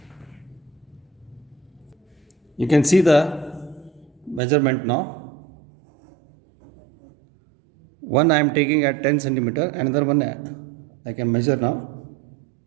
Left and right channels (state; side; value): drops out; left; at 4.4 s